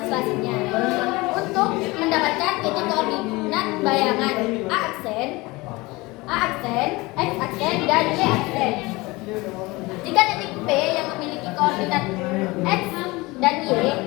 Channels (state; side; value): quieter; right; 22.6 dB